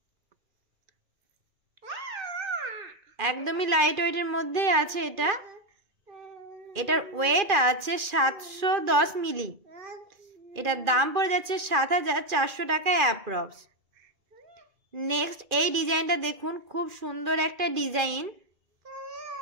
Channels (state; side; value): late; left; 2.4 ms